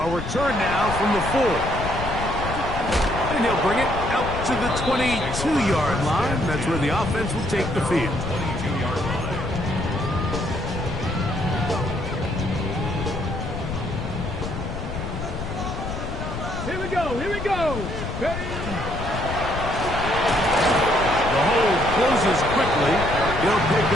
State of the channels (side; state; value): left; noise; rumble, 6 dB below the sound